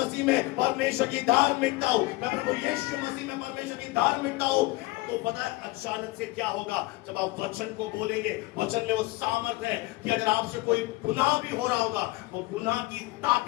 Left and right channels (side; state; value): right; quieter; 20.8 dB